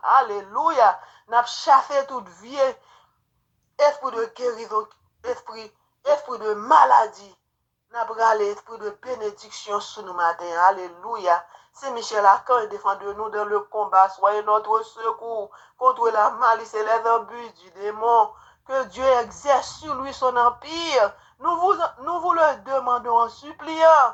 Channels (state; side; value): identical; both; correlation 1.00